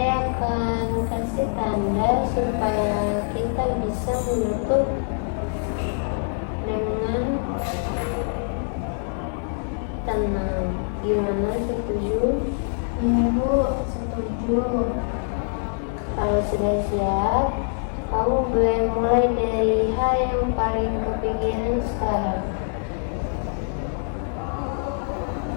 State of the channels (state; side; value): silent; right; 62 dB below the other